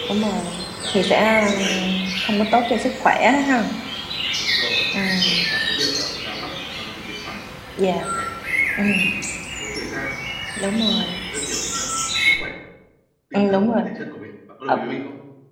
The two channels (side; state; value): both; identical; correlation 1.00